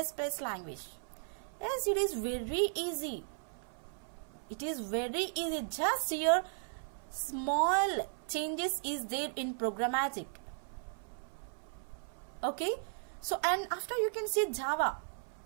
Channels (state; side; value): silent; left; 54 dB below the other